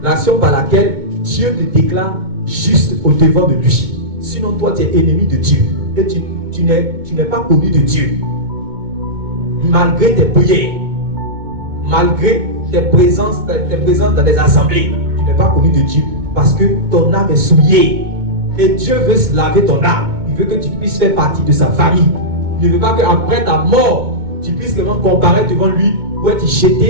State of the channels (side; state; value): left; late; 2.2 ms